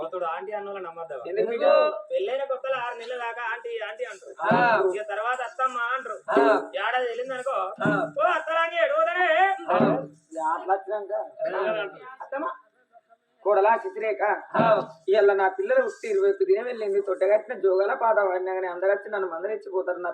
ఆంటీ అన్న నమ్మద్దాం పెళ్ళైన కొత్తలో 6 నెలల దాకా ఆంటీ ఆంటీ అంటారు ఇక తర్వాత అత్తమ్మ అంటారు ఏడాది వెళ్ళింది అనుకో ఓ అత్తలాంటి ఎడుగుదనే అత్తమ్మ కోడలా చిత్రేక ఇవాళ నా పిల్లలు పుట్టి 21 దినం వెళ్ళింది తొట్టగట్టిన జోగాల పాట వాడినా కానీ అందరొచ్చి నన్ను మందరిచ్చిపోతారు నా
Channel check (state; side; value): identical; both; correlation 1.00